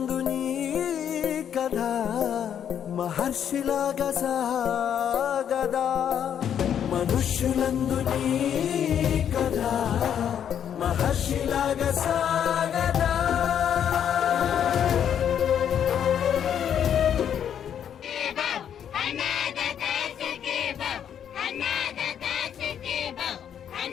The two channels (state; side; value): quieter; right; 9.0 dB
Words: నీ కథ మహర్షిలాగా సాగదా. మనుష్యులందు నీ కథ మహర్షిలాగా సాగదా.